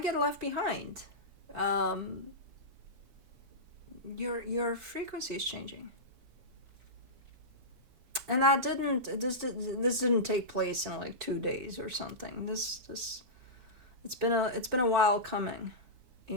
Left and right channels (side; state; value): left; late; 7.1 ms